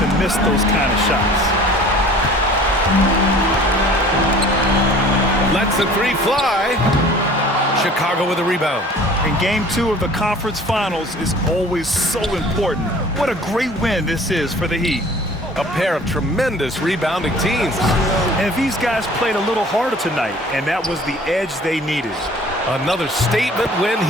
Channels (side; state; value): both; normal; correlation 0.48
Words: miss those kind of shots. Lets the 3 fly. Chicago with a rebound. And game 2 of the conference finals is always so important. What a great win this is for the Heat. A pair of tremendous rebounding teams. And these guys played a little harder tonight, and that was the edge they needed. Another statement win